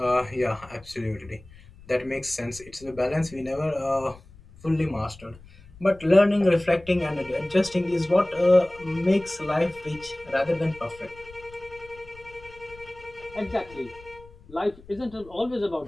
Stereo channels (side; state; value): left; noise; rumble, 22 dB below the sound